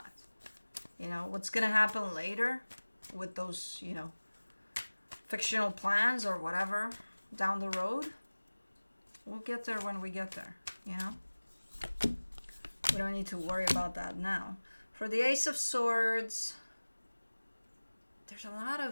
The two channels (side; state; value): both; inverted; correlation -1.00